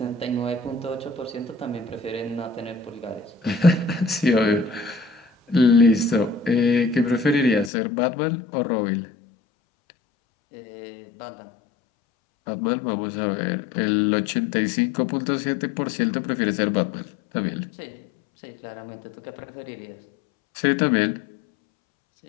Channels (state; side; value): drops out; right; at 7.7 s